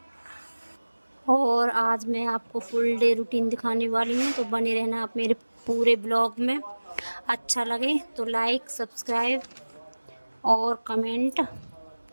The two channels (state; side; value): inverted; both; correlation -1.00